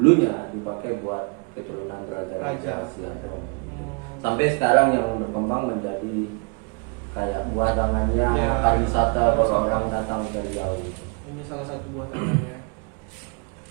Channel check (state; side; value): quieter; left; 34.8 dB